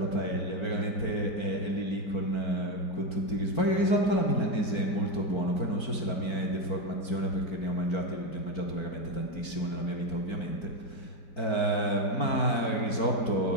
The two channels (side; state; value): right; late; 4.5 ms